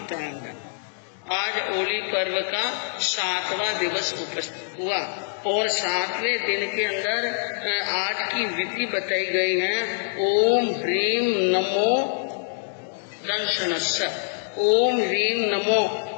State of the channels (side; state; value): right; silent; digital silence